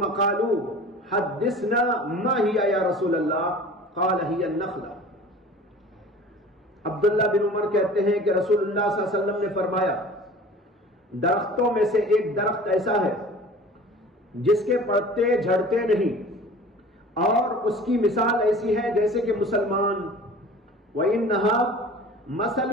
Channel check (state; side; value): normal; both; correlation 0.42